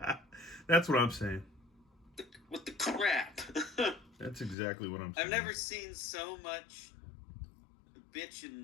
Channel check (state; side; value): drops out; right; at 4.5 s